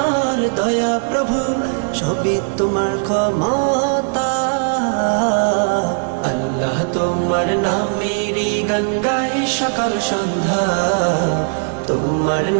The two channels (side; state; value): left; silent; 67 dB below the other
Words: দয়া প্রভু, সবই তোমার ক্ষমতা। আল্লাহ তোমার নামেরই গান গাই সকাল সন্ধ্যা, তোমার